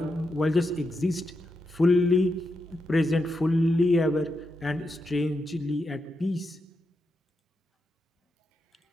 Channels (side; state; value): both; normal; correlation 0.85